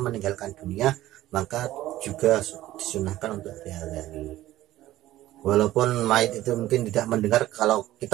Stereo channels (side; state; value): left; quieter; 15.0 dB